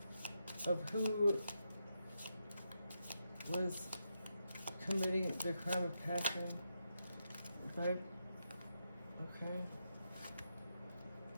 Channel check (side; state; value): both; inverted; correlation -0.84